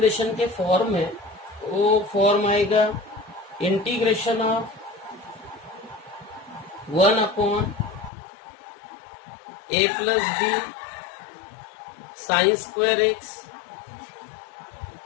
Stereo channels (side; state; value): right; drops out; at 8.1 s